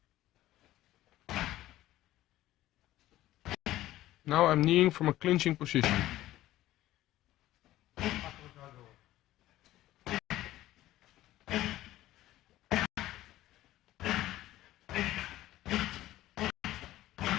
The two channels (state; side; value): quieter; right; 15.0 dB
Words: Now I'm kneeling from a clinching position.